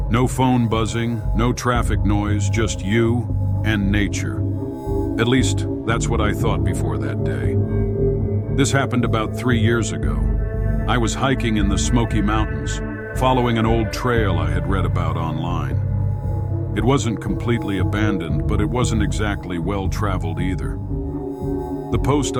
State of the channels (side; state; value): both; identical; correlation 1.00